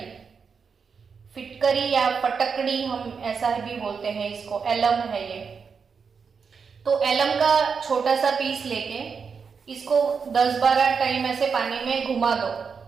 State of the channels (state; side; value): quieter; left; 5.8 dB